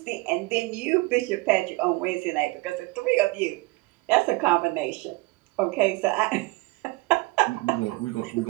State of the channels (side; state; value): left; quieter; 23.2 dB